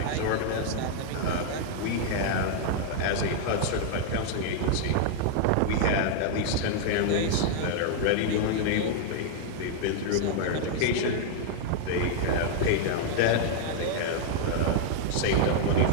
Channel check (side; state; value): both; different; correlation -0.01